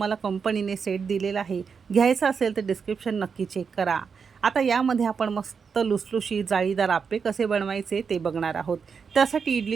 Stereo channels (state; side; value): quieter; left; 5.9 dB